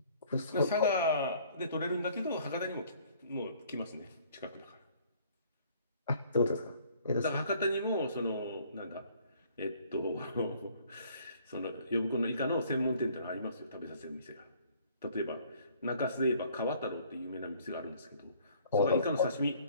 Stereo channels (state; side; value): inverted; both; correlation -0.57